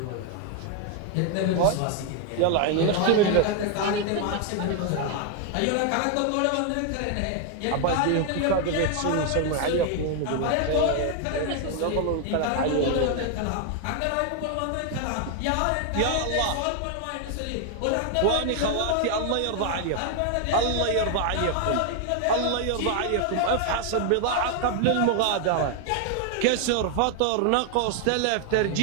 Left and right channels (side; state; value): both; different; correlation 0.00